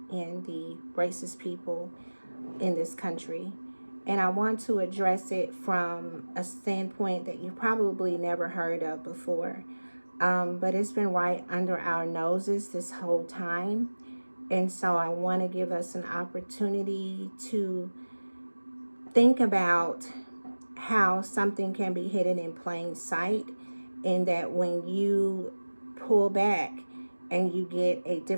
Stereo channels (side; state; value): both; inverted; correlation -1.00